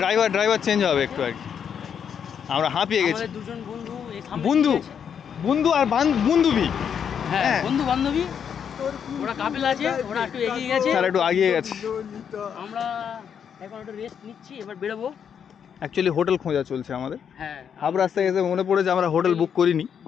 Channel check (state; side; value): quieter; right; 7.8 dB